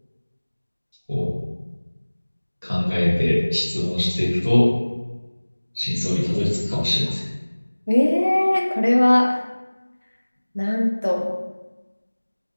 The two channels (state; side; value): inverted; both; correlation -1.00